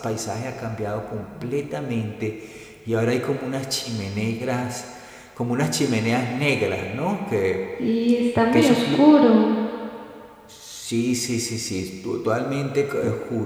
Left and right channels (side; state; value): both; identical; correlation 1.00